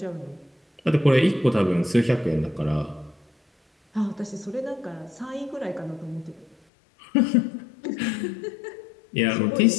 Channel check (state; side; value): drops out; right; at 6.6 s